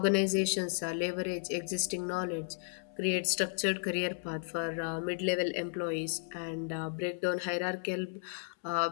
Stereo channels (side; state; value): right; silent; 55 dB below the other